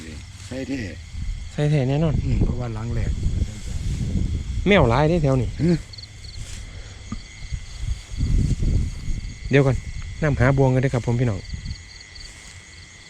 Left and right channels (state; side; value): identical; both; correlation 1.00